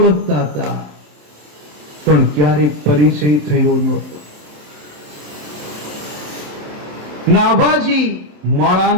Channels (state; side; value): late; left; 27 ms